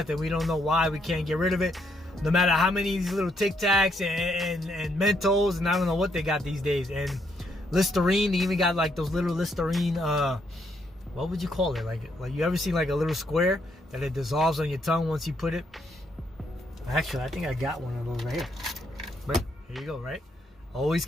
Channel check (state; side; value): normal; both; correlation 0.74